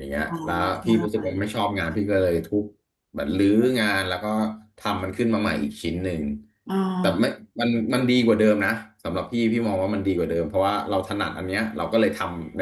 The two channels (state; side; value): identical; both; correlation 1.00